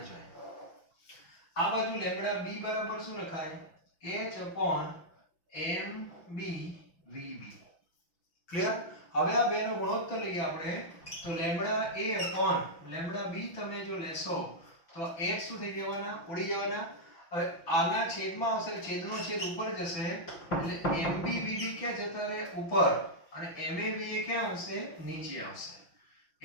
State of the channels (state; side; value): late; right; 6.0 ms